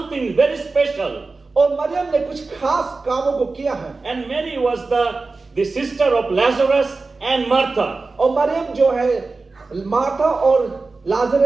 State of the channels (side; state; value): left; quieter; 3.8 dB